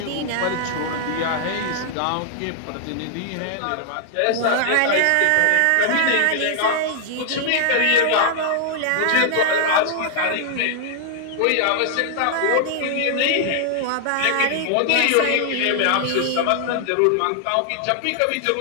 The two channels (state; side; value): different; both; correlation -0.01